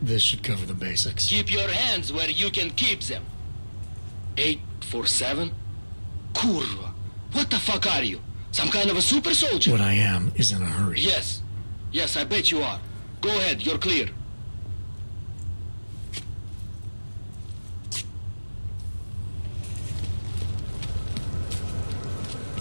This should cover the basics. Keep your hands where you can keep them. 847? Kurva. What the fuck are you? Some kind of a super soldier? What I am is in a hurry. Yes. Yes, I bet you are. Go ahead, you're clear.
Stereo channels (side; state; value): both; inverted; correlation -1.00